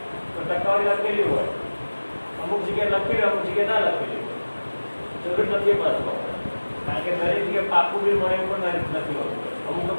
તો ટકાવારી લખેલી હોય, અમુક જગ્યાએ લખેલી અમુક જગ્યાએ ના લખેલી હોય. જરૂર નથી પાછો, કારણ કે દરેક જગ્યાએ પાકું બિલ મળે એવું પણ નથી હોતું. અમુક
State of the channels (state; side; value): inverted; both; correlation -1.00